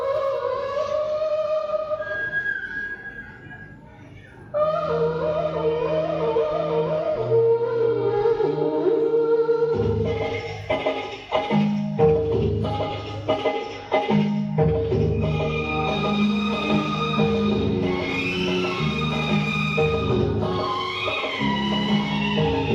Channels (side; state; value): both; identical; correlation 1.00